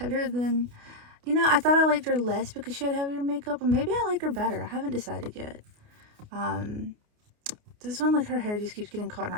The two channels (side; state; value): left; late; 29 ms